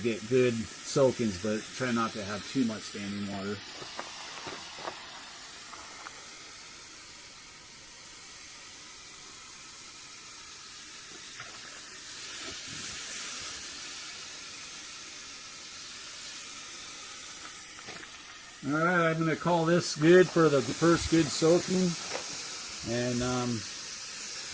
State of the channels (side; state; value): right; noise; rumble, 27 dB below the sound